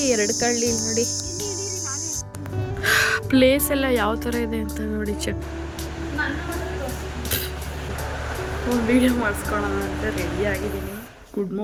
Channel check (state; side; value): identical; both; correlation 1.00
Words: 2 ಕಳ್ಳಿ ನೋಡಿ. ಪ್ಲೇಸ್ ಎಲ್ಲ ಯಾವ ಥರ ಇದೆ ಅಂತ ನೋಡಿ ಚೆಕ್ ಒಂದು ವೀಡಿಯೋ ಮಾಡಿಸ್ಕೊಳ್ಳೋಣ ಅಂತ ರೆಡಿ ಆಗಿದ್ದೀನಿ. Good